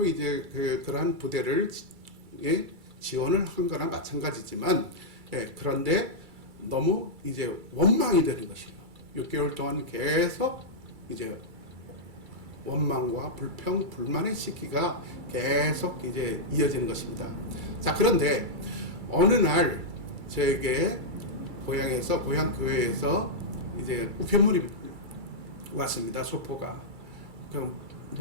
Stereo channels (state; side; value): late; left; 2.3 ms